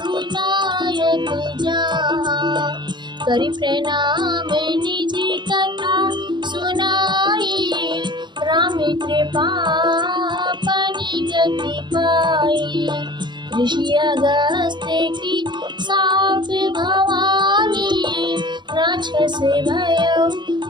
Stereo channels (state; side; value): late; left; 0.22 ms